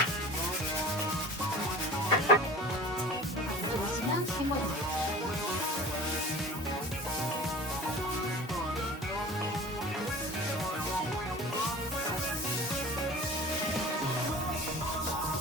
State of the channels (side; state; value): both; normal; correlation 0.40